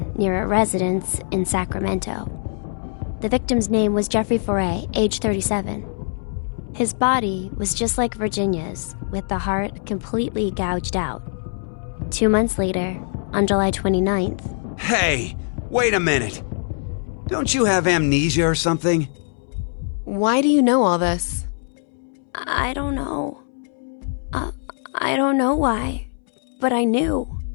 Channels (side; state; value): right; silent; 64 dB below the other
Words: near a residence in Sacramento. The victim's name was Jeffrey Foray, age 37. His body was just like Virginia's, with the heart completely gouged out. 2 months later, on July 29th... Hey, wait a minute. Don't you have amnesia or something? Why do you know all this? I don't know. I don't know why, but I knew.